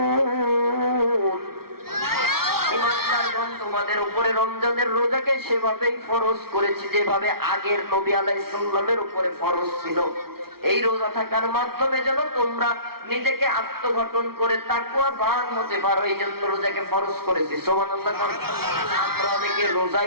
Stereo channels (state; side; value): late; left; 0.94 ms